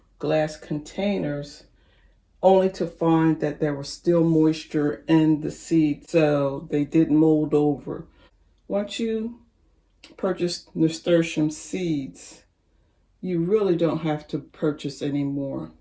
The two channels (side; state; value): both; identical; correlation 1.00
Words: glass containers, only to find that there was still moisture in the seed, so they didn't mold over. Once you purchase nasturtium seeds, you really don't have to purchase anymore